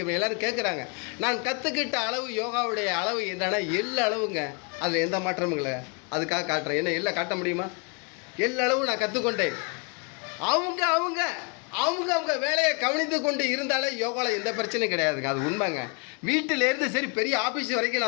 எல்லாரும் கேட்குறாங்க. நான் கற்றுக்கிட்ட அளவு யோகாவுடைய அளவு என்னன்னா எள்ளு அளவுங்க, அதில் எந்த மாற்றமும் இல்லை. அதுக்காக காட்டுறேன். என்ன எல்லாம் காட்ட முடியுமா? எள்ளு அளவு நான் கற்றுக்கொண்டேன். அவங்க அவங்க அவங்க அவங்க வேலையை கவனித்து கொண்டு இருந்தாலே யோகாவில் எந்த பிரச்சனையும் கிடையாதுங்க. அது உண்மைங்க. வீட்டிலேருந்து சரி பெரிய ஆஃபீஸ் வரைக்கும்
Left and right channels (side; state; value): right; quieter; 34.4 dB